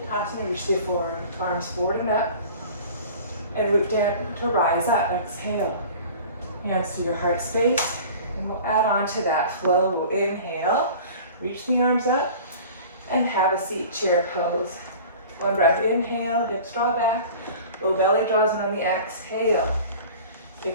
reach the forearms forward and up. And root down to rise up, exhale. Hands to your heart space. And we'll add on to that flow. We'll inhale, reach the arms up, and have a seat, chair pose. One breath, inhale, hips draw back. Low belly draws in on the exhale.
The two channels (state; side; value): inverted; both; correlation -0.42